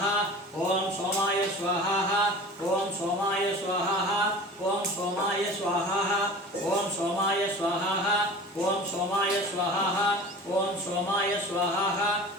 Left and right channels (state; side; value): normal; both; correlation 0.38